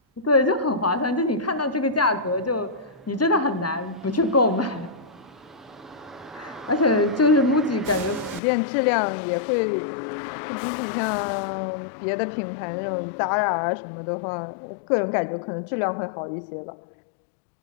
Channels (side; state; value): right; drops out; at 8.4 s